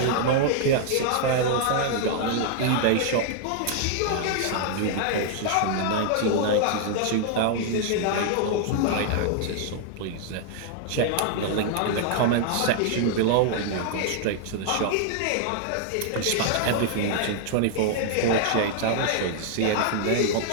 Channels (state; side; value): different; both; correlation -0.01